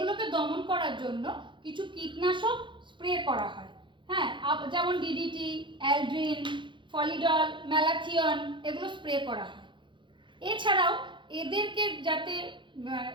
দমন করার জন্য কিছু কীটনাশক স্প্রে করা হয়। হ্যাঁ, যেমন ডিডিটি, অ্যালড্রিন, ফলিডল, ম্যালাথিয়ন, এগুলো স্প্রে করা হয়। এছাড়াও এদেরকে যাতে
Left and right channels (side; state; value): left; late; 0.23 ms